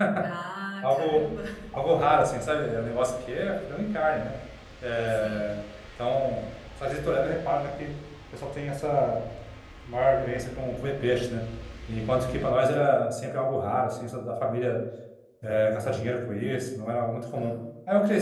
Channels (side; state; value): both; identical; correlation 1.00